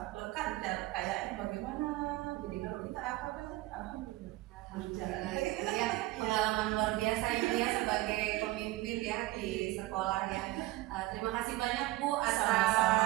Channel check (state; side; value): quieter; left; 18.5 dB